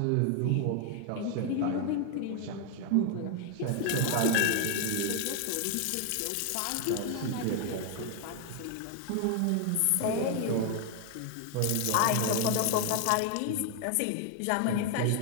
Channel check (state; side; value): different; both; correlation 0.01